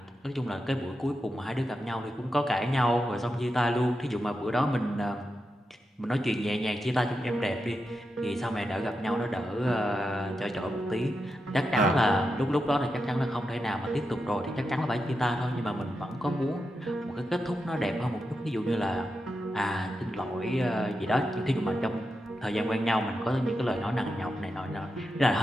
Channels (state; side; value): normal; both; correlation 0.88